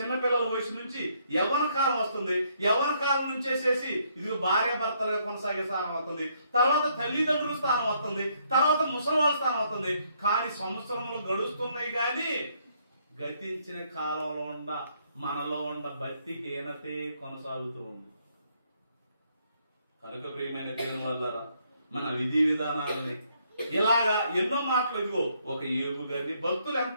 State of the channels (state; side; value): inverted; both; correlation -0.70